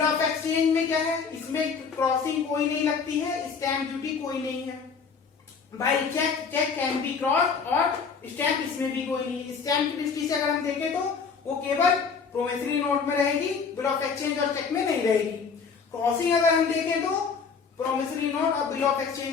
ऑफ एक्सचेंज में क्या है, इसमें क्रॉसिंग कोई नहीं लगती है, स्टैम्प ड्यूटी कोई नहीं है। By cheque can be cross और स्टैम्प इसमें भी कोई नहीं। स्टैम्प की दृष्टि से अगर हम देखें तो वो केवल प्रोमिसरी नोट में रहेगी, बिल ऑफ एक्सचेंज और चेक में नहीं रहेगी। क्रॉसिंग अगर हम देखें तो प्रोमिसरी नोट और बिल ऑफ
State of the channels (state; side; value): quieter; right; 5.6 dB